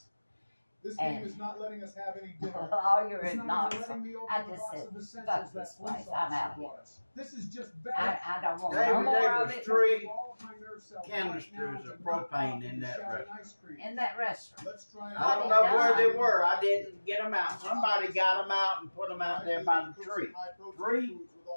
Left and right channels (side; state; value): both; inverted; correlation -1.00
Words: This game is not letting us have any dinner. lawyer and Knoxville. I just said, fuck this place. I'm out here. This is just I don't want no David, more there of was it 3 canisters of propane in that restaurant. in that restaurant. I don't know where they were. I didn't get them out. Somebody got them out and put them out there by the tree. 3?